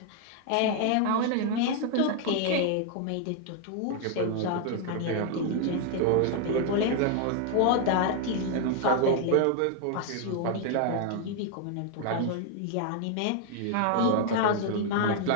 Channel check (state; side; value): different; both; correlation 0.00